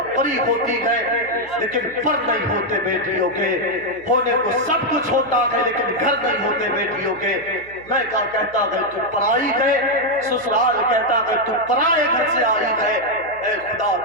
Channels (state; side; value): noise; right; hum, 24 dB below the sound